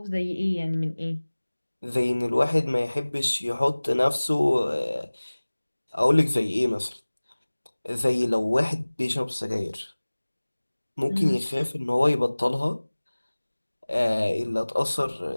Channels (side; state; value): both; inverted; correlation -1.00